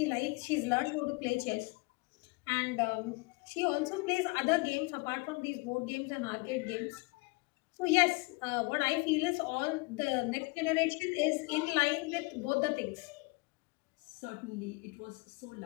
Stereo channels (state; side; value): quieter; right; 27.6 dB